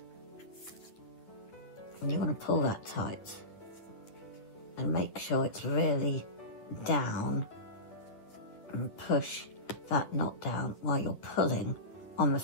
And you want to pull that tight. And make sure it's really down. And push that knot down while you're pulling on the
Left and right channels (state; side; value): late; right; 9.7 ms